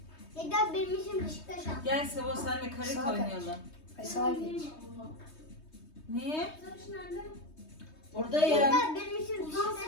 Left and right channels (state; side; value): late; right; 3.2 ms